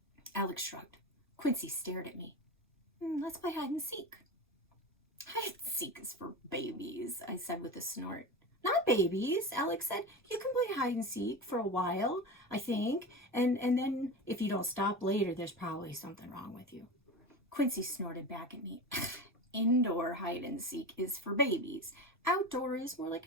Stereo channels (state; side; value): normal; both; correlation 0.26